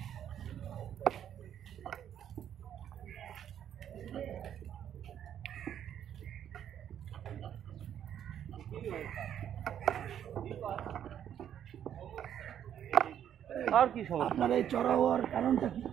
আর কি সমস্যা? আপনার এই চড়া হওয়ার কারণটা কি?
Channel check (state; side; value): quieter; left; 9.8 dB